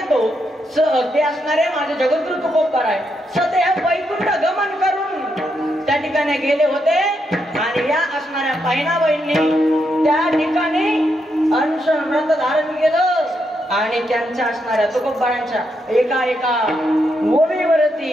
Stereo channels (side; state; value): both; normal; correlation 0.81